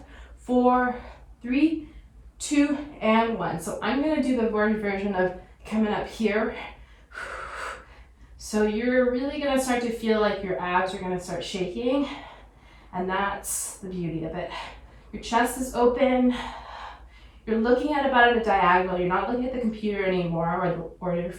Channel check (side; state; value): both; identical; correlation 1.00